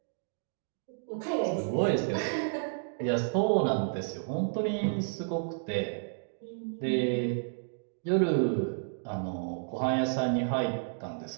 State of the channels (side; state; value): left; silent; digital silence